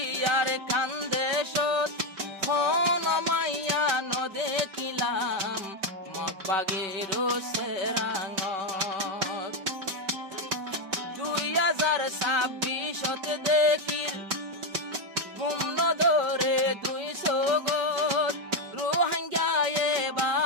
আর কান্দে সত খন মাইয়া নদে কিলাম মগবাগের সেরাঙত 2026 দেখির গুম ধরে 200 গত রোহিঙ্গা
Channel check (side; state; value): left; late; 5.2 ms